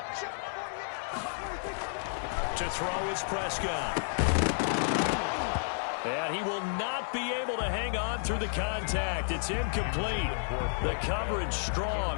To throw is Prescott. And he will not be able to hang on through the contact. It's incomplete. The coverage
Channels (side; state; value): right; silent; digital silence